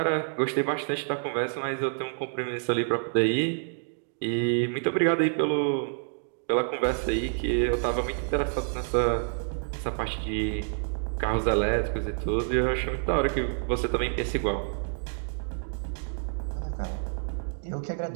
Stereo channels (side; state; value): left; silent; 59 dB below the other